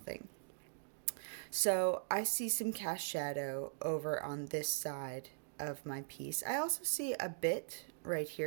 So I see some cast shadow over on this side of my piece. I also see a bit right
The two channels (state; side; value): silent; left; digital silence